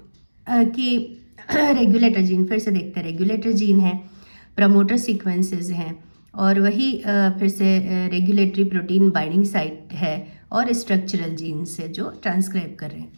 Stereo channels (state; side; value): inverted; both; correlation -1.00